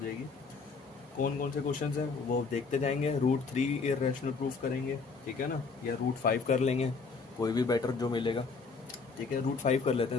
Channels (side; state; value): right; quieter; 4.7 dB